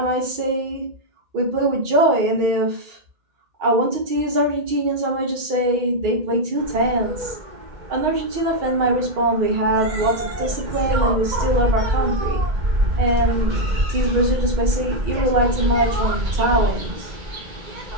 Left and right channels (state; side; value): late; left; 2.1 ms